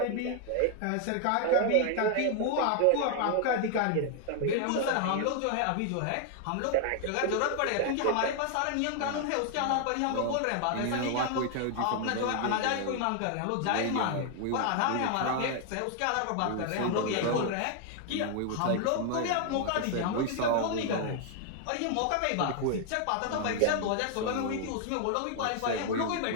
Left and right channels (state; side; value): different; both; correlation 0.00